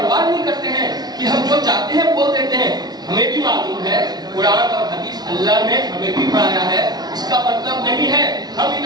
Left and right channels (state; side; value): late; left; 0.19 ms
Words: नहीं करते हैं कि हम जो चाहते हैं बोल देते हैं। हमें भी मालूम है कुरान और हदीस अल्लाह ने हमें भी पढ़ाया है। इसका मतलब नहीं है हम इन